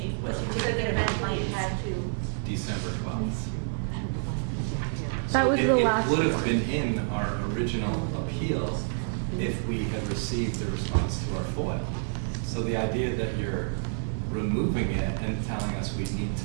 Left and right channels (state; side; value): silent; left; digital silence